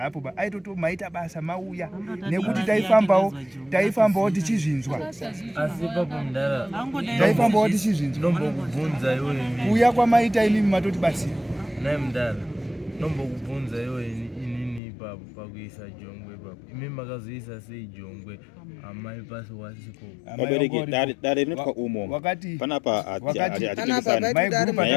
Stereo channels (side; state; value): right; drops out; at 14.8 s